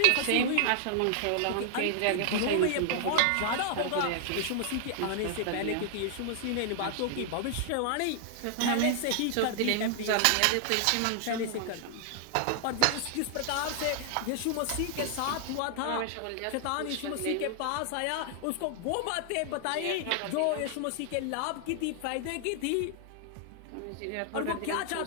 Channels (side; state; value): both; different; correlation 0.00